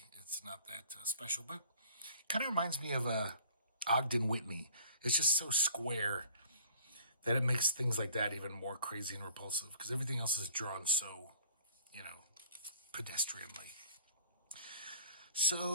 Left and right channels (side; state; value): both; inverted; correlation -0.53